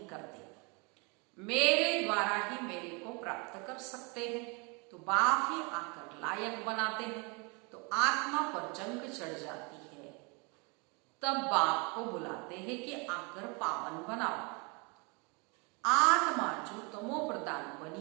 करते, मेरे द्वारा ही मेरे को प्राप्त कर सकते हैं। तो बाप ही आकर लायक बनाते हैं। तो आत्मा पर जंग चढ़ जाती है, तब बाप को बुलाते हैं कि आकर पावन बनाओ। आत्मा जो तमो प्रधान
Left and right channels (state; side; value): quieter; left; 31.0 dB